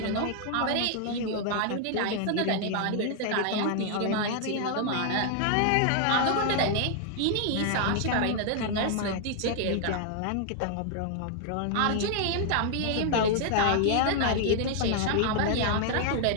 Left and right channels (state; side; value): different; both; correlation 0.00